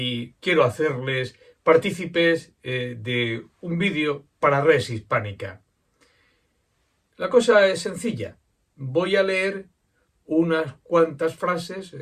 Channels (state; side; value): identical; both; correlation 1.00